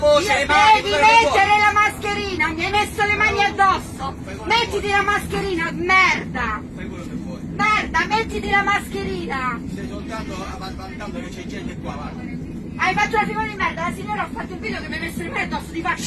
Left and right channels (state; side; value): identical; both; correlation 1.00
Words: le mani, devi mettere la mascherina, mi hai messo le mani addosso! Mettiti la mascherina, merda! Fai quello che vuoi. Merda, mettiti la mascherina! Stai soltanto vantando che c'è gente qua, guarda. Hai fatto una figura di merda, la signora ha fatto il video che mi hai messo le mani addosso, ti